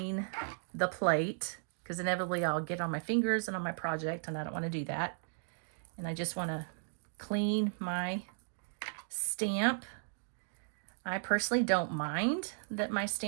the plate, because inevitably I'll get on my fingers and on my project, and I don't want to do that. And I just want to clean my stamp. I personally don't mind that my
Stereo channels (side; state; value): left; silent; digital silence